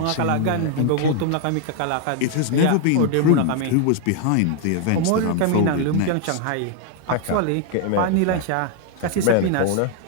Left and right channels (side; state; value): both; different; correlation 0.00